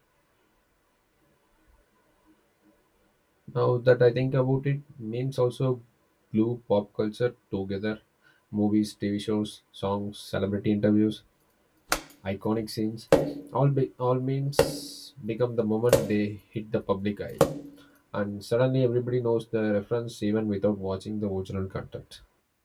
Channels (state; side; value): identical; both; correlation 1.00